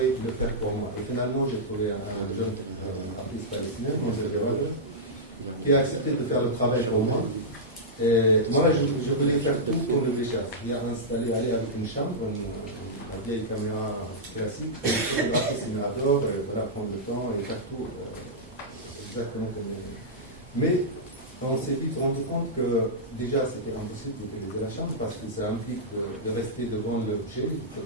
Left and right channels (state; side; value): normal; both; correlation -0.11